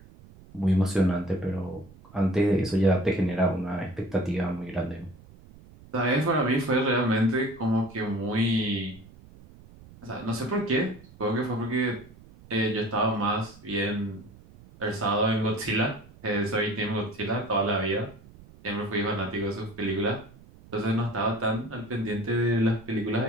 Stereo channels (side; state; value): right; noise; rumble, 22 dB below the sound